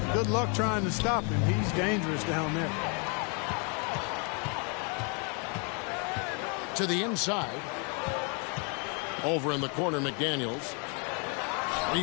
good luck trying to stop him. He's dangerous down there. To the inside. Over in the corner, McDaniels.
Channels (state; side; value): quieter; right; 36.2 dB